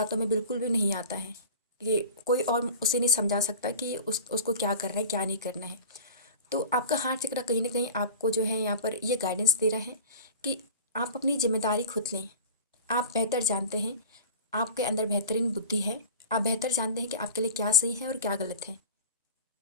में बिल्कुल भी नहीं आता है कि कोई और उसे नहीं समझा सकता कि उसको क्या करना है, क्या नहीं करना है। तो आपका हार्ट चक्र कहीं ना कहीं आपको जो है यहाँ पर ये गाइडेंस दे रहा है कि आप अपनी जिम्मेदारी खुद लें। आप बेहतर जानते हैं, आपके अंदर बेहतरीन बुद्धि है, आप बेहतर जानते हैं कि आपके लिए क्या सही है और क्या गलत है,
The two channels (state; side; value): inverted; both; correlation -0.35